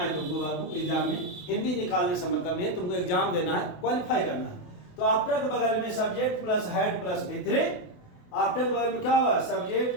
तुमको बाबू, एग्जाम में हिंदी निकालने से मतलब नहीं है, तुमको एग्जाम देना है, क्वालिफाई करना है। तो आफ्टर के बगल में subject plus head plus V3, after के बगल में क्या होगा,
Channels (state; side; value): late; right; 28 ms